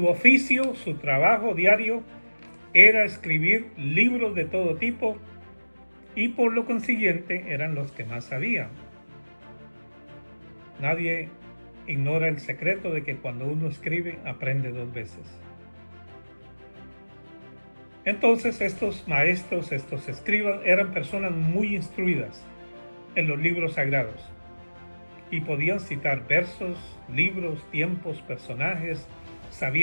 oficio, su trabajo diario era escribir libros de todo tipo y por lo consiguiente eran los que más sabían. Nadie ignora el secreto de que cuando uno escribe aprende dos veces. Entonces estos maestros, estos escribas eran personas muy instruidas en los libros sagrados y podían citar versos, libros, tiempos, personajes,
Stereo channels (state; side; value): inverted; both; correlation -1.00